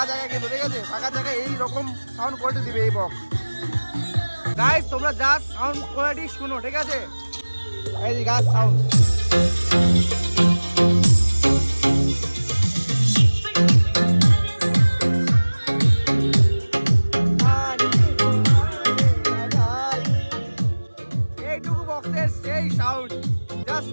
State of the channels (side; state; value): both; inverted; correlation -1.00